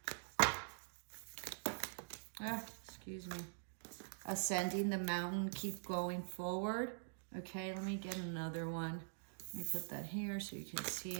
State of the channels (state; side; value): silent; left; digital silence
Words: Excuse me. Ascending the mountain, keep going forward. Okay, let me get another one. Let me put that here so you can see